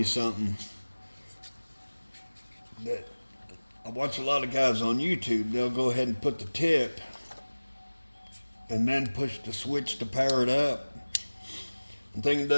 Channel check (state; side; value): inverted; both; correlation -1.00